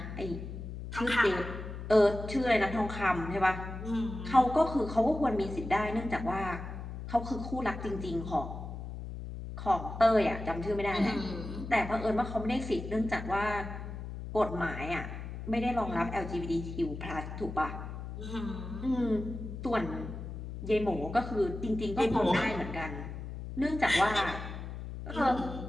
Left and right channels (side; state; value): left; noise; hum, 8 dB below the sound